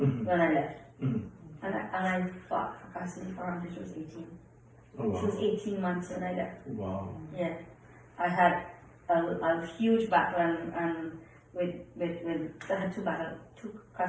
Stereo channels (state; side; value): identical; both; correlation 1.00